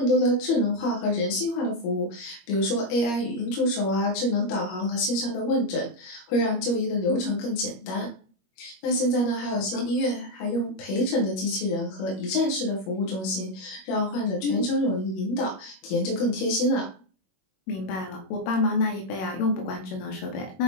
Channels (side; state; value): right; late; 21 ms